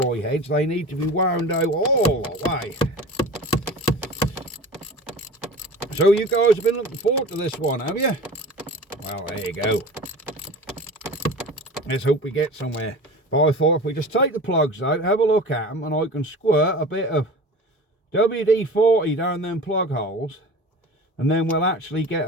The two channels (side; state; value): both; normal; correlation 0.36